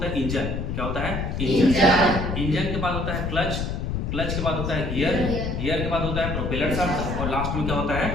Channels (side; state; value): left; noise; rumble, 2 dB below the sound